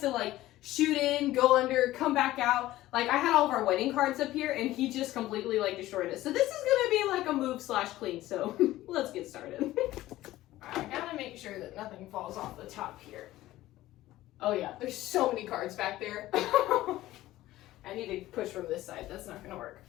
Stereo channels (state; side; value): quieter; right; 15.9 dB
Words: like shoot in, go under, come back out. Like, I had all of our wedding cards up here and he just completely like destroyed it. So this is gonna be like a move/clean. So let's get started. I gotta make sure that nothing falls off the top here. Oh yeah, there's so many cards back there. I need to push from this side. That's not gonna work.